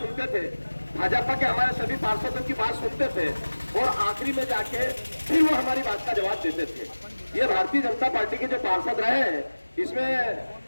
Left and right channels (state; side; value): inverted; both; correlation -1.00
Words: थे, भाजपा के हमारे सभी पार्षदों की बात सुनते थे और आखिरी में जाके फिर वो हमारी बात का जवाब देते थे। ये भारतीय जनता पार्टी के जो पार्षद रहे हैं, इसमें